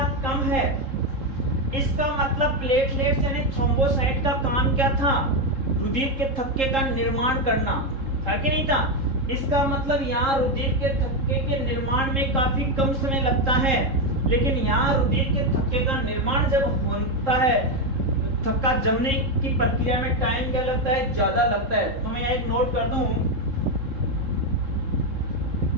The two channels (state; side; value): late; left; 3.7 ms